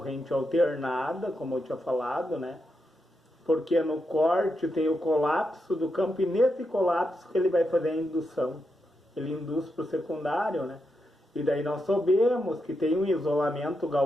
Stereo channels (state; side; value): normal; both; correlation 0.84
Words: alternada, como eu tinha falado, né? Porque no corte tem o colapso do campo e nesse colapso que ele vai fazer a indução. Ele induz para o secundário, né? E daí nós sabemos que tem um isolamento